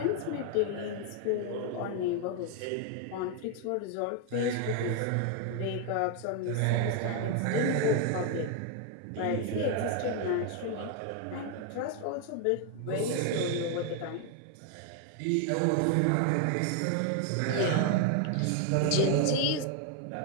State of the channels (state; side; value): different; both; correlation 0.01